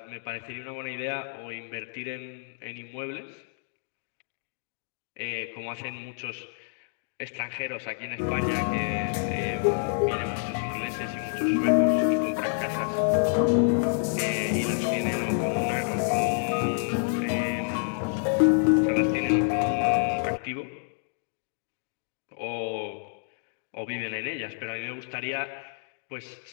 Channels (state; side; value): silent; right; digital silence